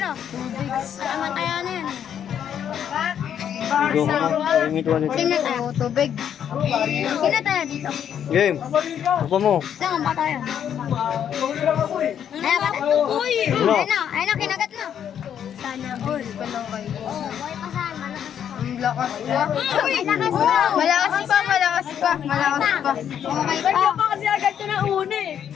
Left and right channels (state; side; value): quieter; right; 9.1 dB